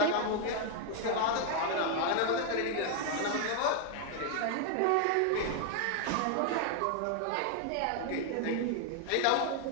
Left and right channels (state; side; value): different; both; correlation 0.00